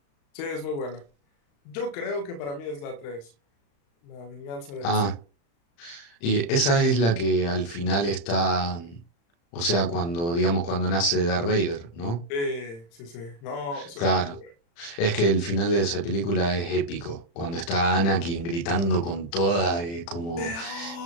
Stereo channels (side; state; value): right; late; 35 ms